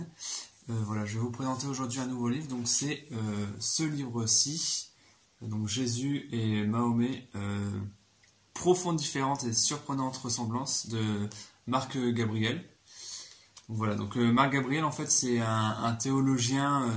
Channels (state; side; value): identical; both; correlation 1.00